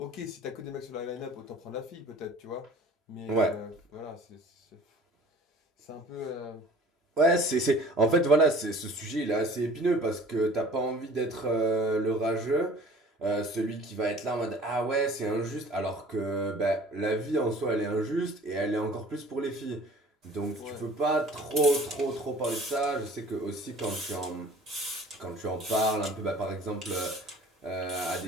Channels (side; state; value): both; normal; correlation 0.48